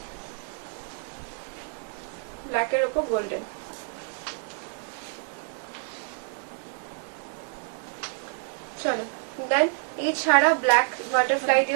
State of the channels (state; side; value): silent; left; 58 dB below the other